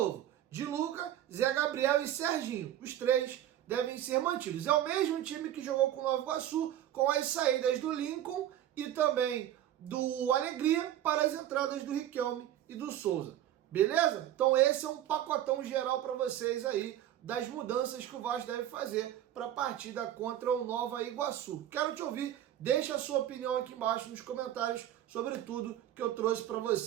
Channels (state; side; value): quieter; left; 11.8 dB